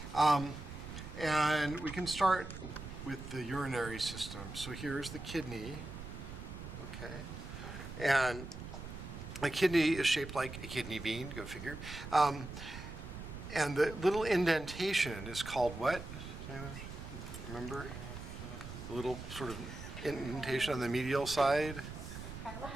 And we can start with the urinary system. So here's the kidney. Okay. And a kidney is shaped like a kidney bean, go figure. And the little indentation is called what? Remember? The little sort of indentation on the medial side?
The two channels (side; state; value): right; noise; rumble, 10 dB below the sound